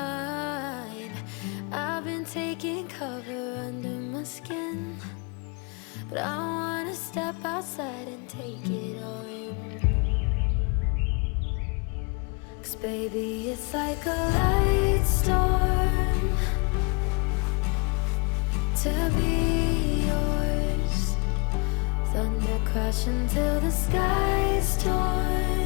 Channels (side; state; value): right; quieter; 32.8 dB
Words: I've been taking cover under my skin, but I wanna step outside and take it all in. 'Cause baby, it's like a light storm to be yours. Thunder crashing till the sky's